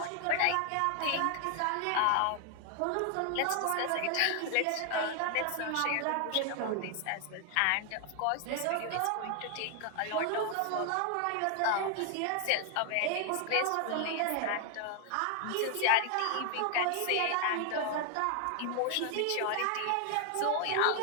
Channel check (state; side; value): different; both; correlation 0.00